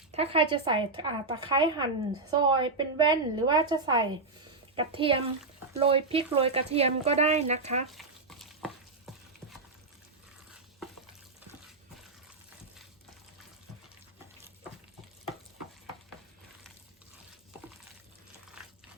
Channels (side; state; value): left; quieter; 3.6 dB